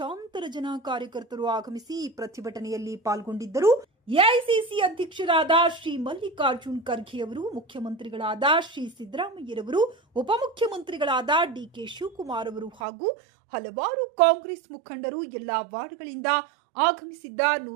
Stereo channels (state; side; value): drops out; left; at 12.7 s